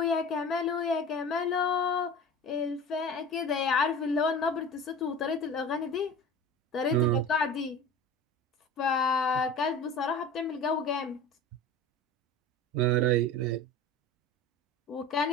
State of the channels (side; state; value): both; normal; correlation 0.36